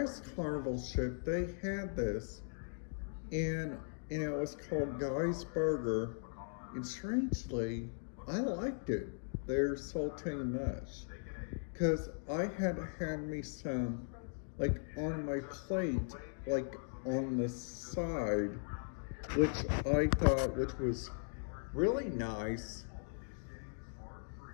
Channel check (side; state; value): right; silent; digital silence